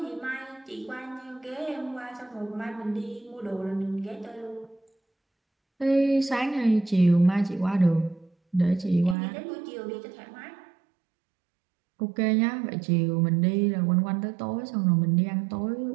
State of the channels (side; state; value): left; drops out; at 9.2 s